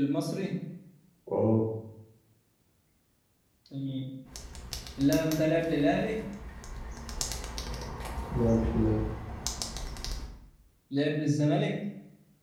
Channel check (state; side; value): identical; both; correlation 1.00